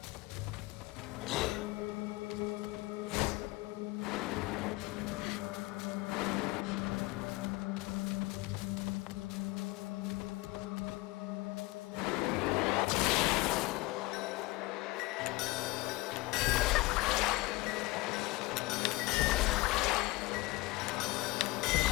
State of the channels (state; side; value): quieter; right; 22.0 dB